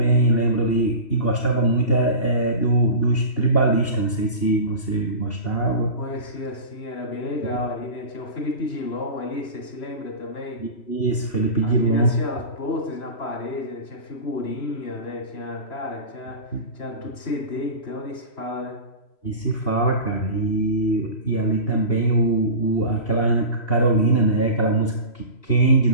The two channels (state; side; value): late; right; 3.0 ms